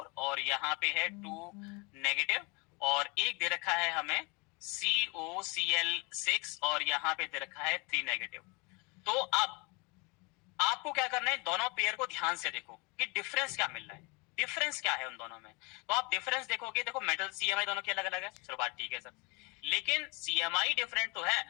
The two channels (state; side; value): quieter; right; 29.1 dB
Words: और यहाँ पे है 2 नेगेटिव, और एक दे रखा है हमें COCl6 और यहाँ पे दे रखा है 3 नेगेटिव। तो अब आपको क्या करना है, दोनों पेयर को ध्यान से देखो कि डिफरेंस क्या मिल रहा है, डिफरेंस क्या है उन दोनों में। तो आप डिफरेंस देखोगे, देखो मेटल CMI दोनों के अलग अलग है, चलो बात ठीक है सर, लेकिन CMI डिफरेंट तो है,